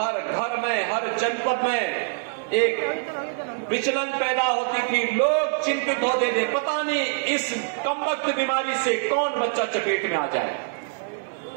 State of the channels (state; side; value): silent; left; digital silence